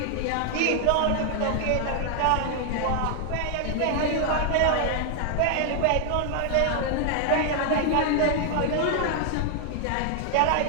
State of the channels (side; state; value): both; different; correlation 0.00